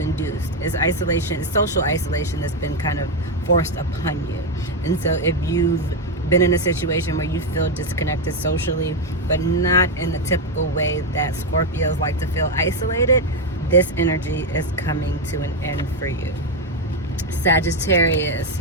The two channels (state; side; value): normal; both; correlation 0.06